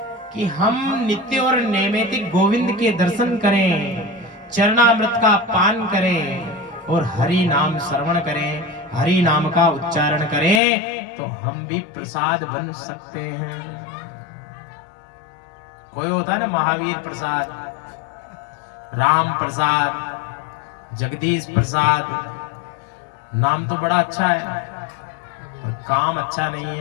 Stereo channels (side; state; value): right; drops out; at 10.6 s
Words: कि हम नित्य और नैमित्तिक गोविंद के दर्शन करें, चरणामृत का पान करें और हरि नाम श्रवण करें, हरि नाम का उच्चारण करें, तो हम भी प्रसाद बन सकते हैं। कोई होता है ना महावीर प्रसाद, राम प्रसाद, जगदीश प्रसाद, नाम तो बड़ा अच्छा है और काम अच्छा नहीं